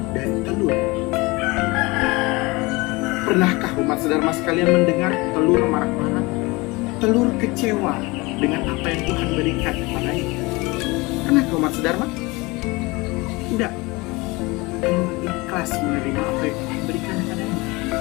dari telur. Pernahkah umat sedharma sekalian mendengar telur marah-marah? Telur kecewa dengan apa yang Tuhan berikan kepadanya? Pernahkah umat sedharma? Tidak. Telur ikhlas menerima apa yang Tuhan berikan kepadanya.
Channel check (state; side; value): quieter; right; 23.9 dB